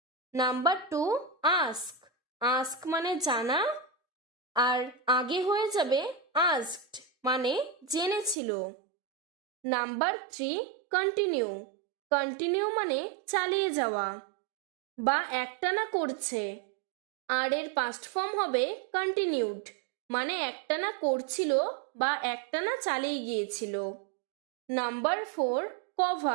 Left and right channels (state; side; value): drops out; left; at 8.3 s